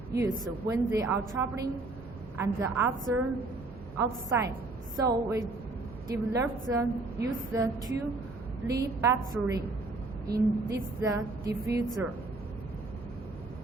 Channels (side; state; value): left; quieter; 3.2 dB